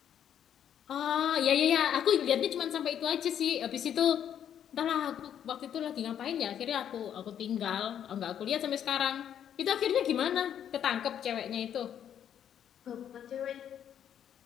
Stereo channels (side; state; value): right; quieter; 9.5 dB